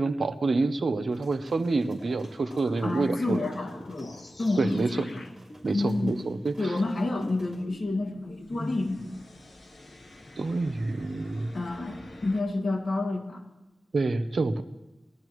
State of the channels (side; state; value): both; normal; correlation 0.93